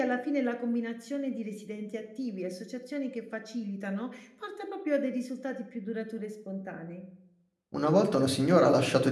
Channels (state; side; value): identical; both; correlation 1.00